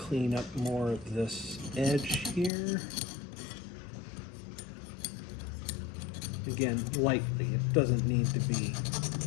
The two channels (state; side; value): drops out; right; at 2.5 s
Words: up more of this edge here. Again, lightly. It doesn't need to be